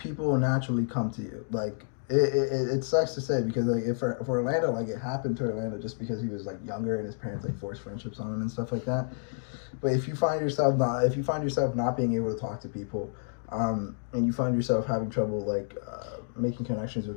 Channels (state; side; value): silent; right; digital silence